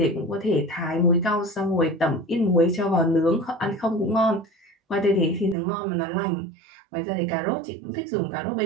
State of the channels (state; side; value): drops out; left; at 5.6 s